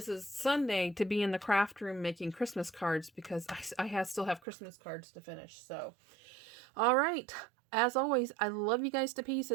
Sunday to be in the craft room making Christmas cards because I still have Christmas cards to finish. So, all right. As always, I love you guys to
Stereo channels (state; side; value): drops out; left; at 4.4 s